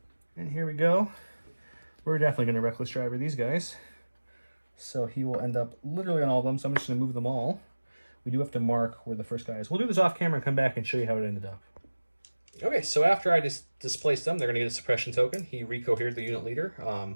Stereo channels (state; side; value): inverted; both; correlation -1.00